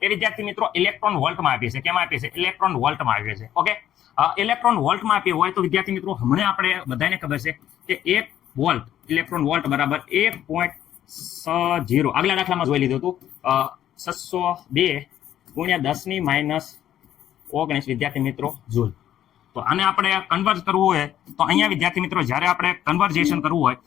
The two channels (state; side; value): quieter; right; 11.3 dB